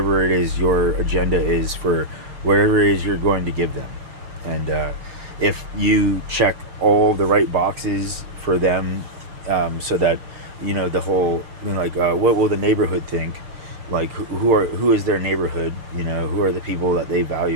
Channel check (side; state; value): left; late; 6.5 ms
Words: it is your agenda is, for whatever it is you're going to give them. And if you check all the right boxes for them, so that, the whole, like, what will the neighborhood think, like, who is their neighborhood, who are the people that they